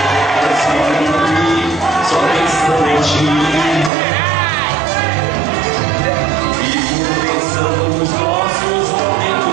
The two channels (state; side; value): drops out; left; at 3.9 s